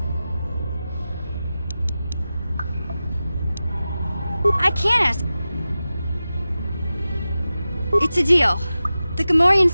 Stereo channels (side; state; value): both; inverted; correlation -0.94